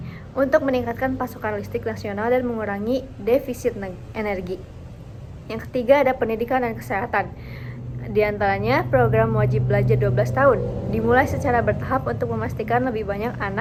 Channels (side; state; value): both; identical; correlation 1.00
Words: untuk meningkatkan pasokan listrik nasional dan mengurangi defisit energi. Yang ketiga ada pendidikan dan kesehatan. Di antaranya program wajib belajar 12 tahun dimulai secara bertahap untuk memastikan lebih banyak